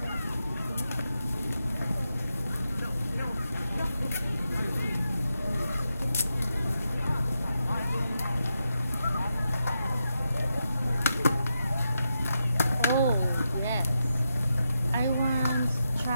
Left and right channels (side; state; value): both; inverted; correlation -0.86